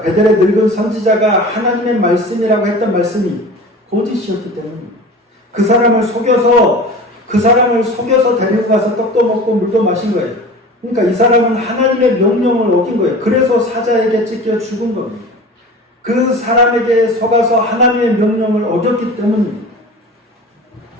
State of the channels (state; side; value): normal; both; correlation 0.37